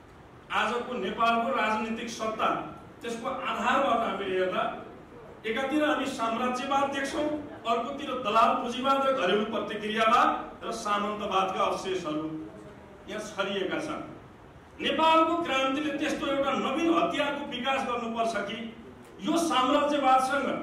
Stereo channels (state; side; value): identical; both; correlation 1.00